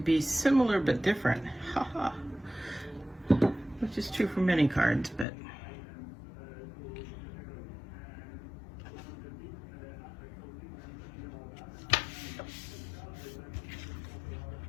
similar but different, haha, which is true for many cards, but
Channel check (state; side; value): drops out; right; at 5.2 s